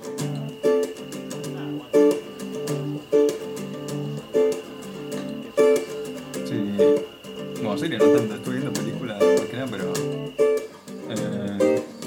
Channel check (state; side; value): identical; both; correlation 1.00